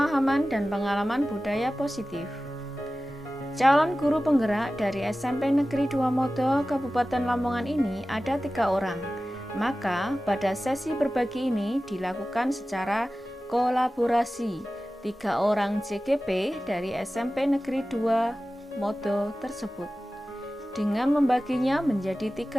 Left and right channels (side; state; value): both; normal; correlation 0.96